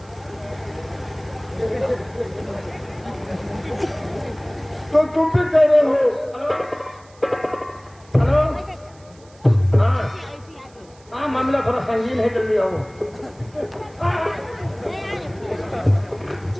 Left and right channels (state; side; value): noise; right; hiss, 28 dB below the sound